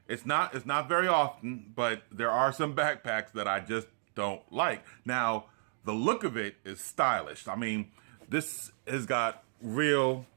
not very often, but there are some backpacks that I just don't like. Now, the look of it is stylish. I mean, this has got real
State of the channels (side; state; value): left; silent; digital silence